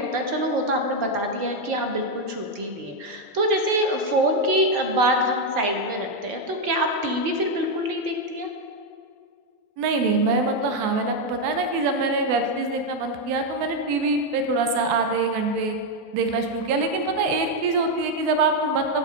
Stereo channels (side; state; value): left; late; 4.7 ms